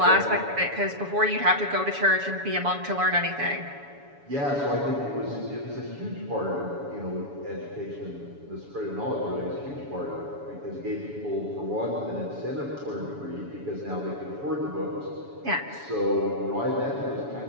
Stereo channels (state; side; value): late; left; 7.1 ms